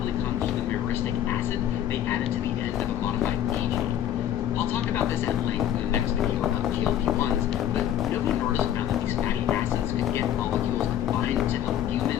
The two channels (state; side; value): quieter; right; 11.0 dB